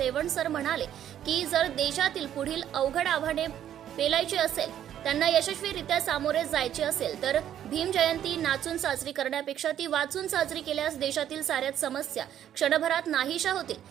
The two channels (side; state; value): left; quieter; 10.6 dB